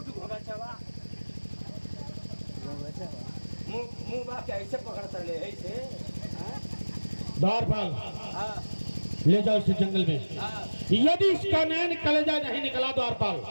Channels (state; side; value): inverted; both; correlation -1.00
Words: घोड़ा चवा, मुंह बा के ऐसे पकड़ता ले ऐसे। द्वारपाल, हाँ ले जाओ इसे जंगल में। हाँ यदि इसका नैन कलेजा नहीं निकला द्वारपाल,